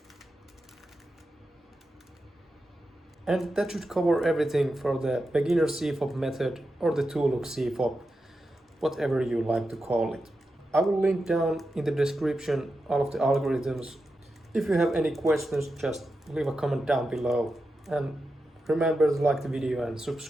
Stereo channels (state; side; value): normal; both; correlation 0.89